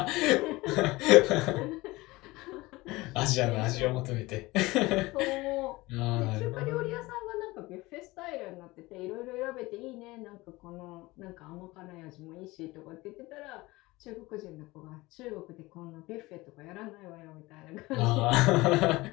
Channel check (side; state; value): right; quieter; 20.9 dB